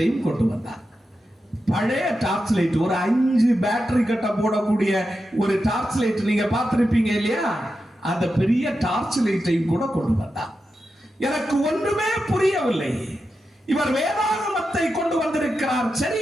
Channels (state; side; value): normal; both; correlation 0.89